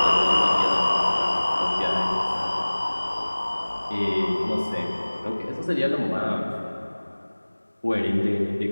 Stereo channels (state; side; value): inverted; both; correlation -1.00